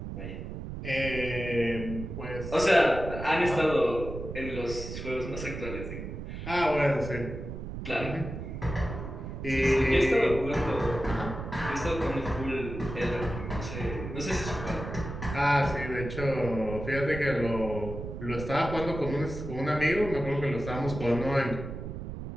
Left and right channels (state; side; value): noise; right; rumble, 8 dB below the sound